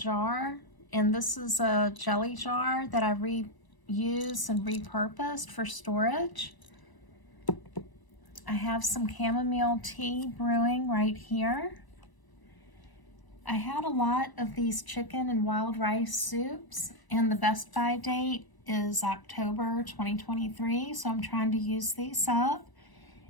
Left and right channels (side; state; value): right; late; 1.0 ms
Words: and this is a jelly jar that I reuse and repurposed for storage. I have some chamomile tea brewing right here. I had a lot of these chicken and wild rice soups, and the best by date is October 2023, so I'm trying to use these up.